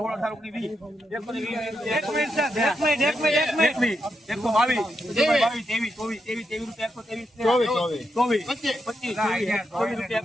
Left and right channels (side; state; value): both; normal; correlation 0.83